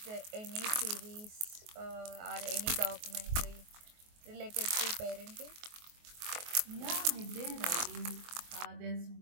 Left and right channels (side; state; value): left; late; 24 ms